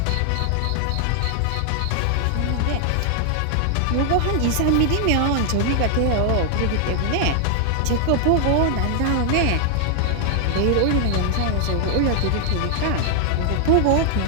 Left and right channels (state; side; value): different; both; correlation 0.00